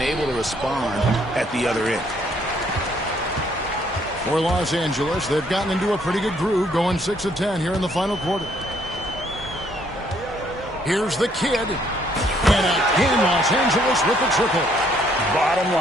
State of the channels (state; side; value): normal; both; correlation 0.67